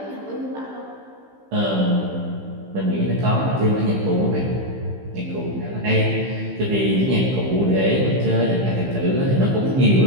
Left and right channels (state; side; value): late; left; 15 ms